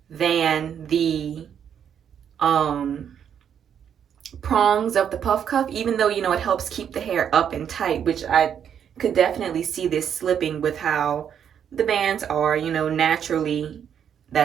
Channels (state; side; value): quieter; left; 8.5 dB